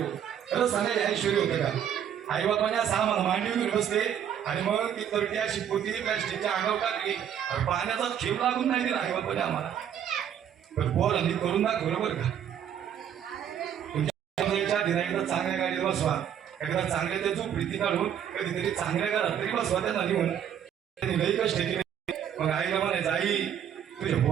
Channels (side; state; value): left; quieter; 9.2 dB